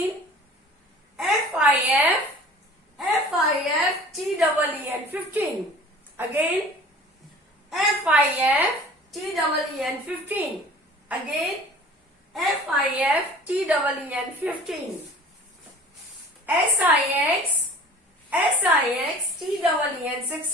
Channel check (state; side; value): normal; both; correlation 0.45